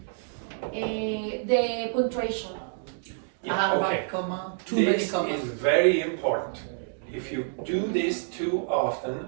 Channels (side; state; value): left; silent; digital silence